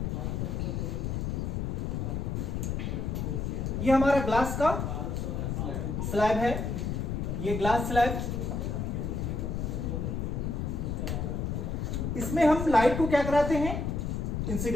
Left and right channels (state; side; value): noise; left; rumble, 1 dB below the sound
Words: ये हमारा ग्लास का स्लैब है, ये ग्लास स्लैब। इसमें हम लाइट को क्या कराते हैं,